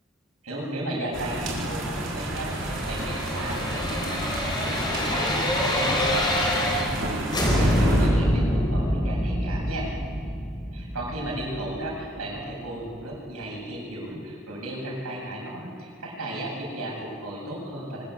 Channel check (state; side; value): normal; both; correlation 0.57